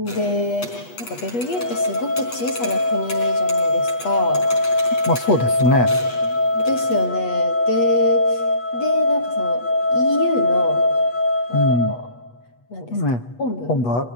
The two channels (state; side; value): late; right; 8.3 ms